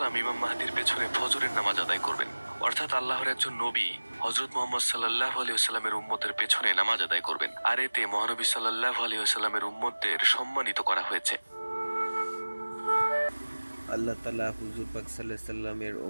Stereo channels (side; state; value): both; inverted; correlation -1.00